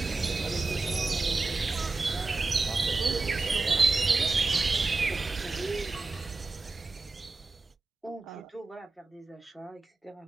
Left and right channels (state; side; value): quieter; left; 3.7 dB